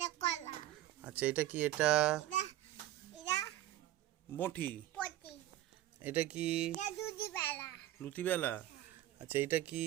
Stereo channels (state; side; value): quieter; left; 14.5 dB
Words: আচ্ছা এটা কি? এটা বটি। এটা কি? লুচি বেলা। আচ্ছা এইটা কি?